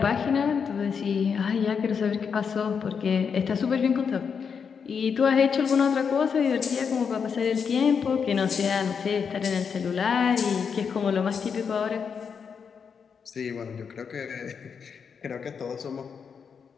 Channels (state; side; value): quieter; right; 6.4 dB